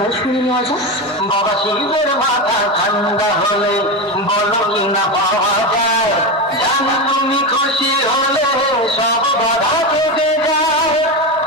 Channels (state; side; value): normal; both; correlation 0.17